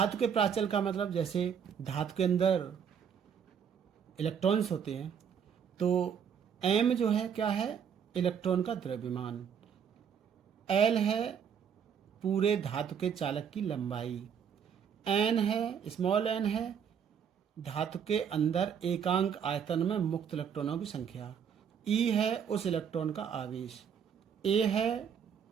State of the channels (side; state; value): left; quieter; 7.7 dB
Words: के प्राचल का मतलब, जैसे धातु के अंदर इलेक्ट्रॉन्स होते हैं, तो m जो है क्या है, इलेक्ट्रॉन का द्रव्यमान, l है पूरे धातु के चालक की लंबाई, n है, स्मॉल n है धातु के अंदर एकांक आयतन में मुक्त इलेक्ट्रॉनों की संख्या, E है उस इलेक्ट्रॉन का आवेश, A है